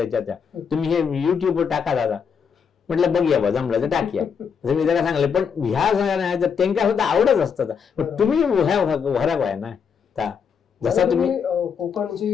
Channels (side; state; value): right; quieter; 6.7 dB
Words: त्या तुम्ही हे युट्यूबवर टाका दादा. म्हटलं बघूया बा, जमलं तर टाकूया. मी त्याला सांगले, पण ह्या नाही तर त्यांना सुद्धा आवडच असतात. पण तुम्ही वराक आहे ना. जसा तुम्ही